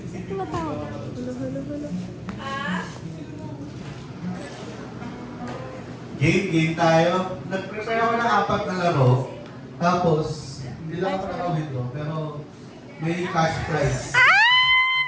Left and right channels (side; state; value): both; identical; correlation 1.00